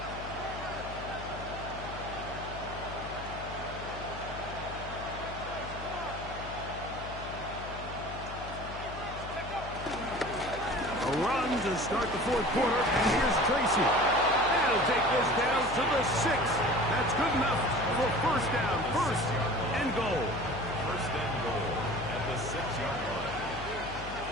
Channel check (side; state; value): left; noise; hum, 10 dB below the sound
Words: A run to start the 4th quarter, and here's Tracy. That'll take this down to the 6. That's good enough for first down, first and goal. First and goal at the 6-yard line.